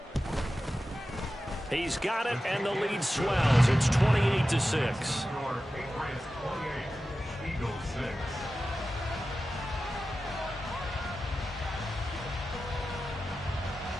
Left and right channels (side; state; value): both; normal; correlation 0.93